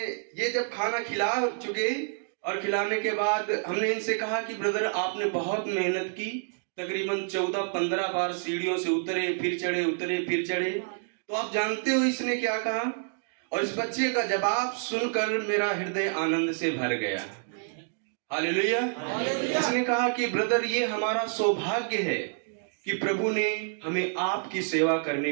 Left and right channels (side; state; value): left; silent; digital silence